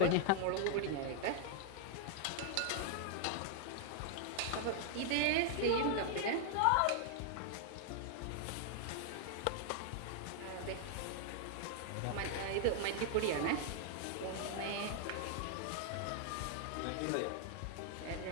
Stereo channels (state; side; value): different; both; correlation 0.00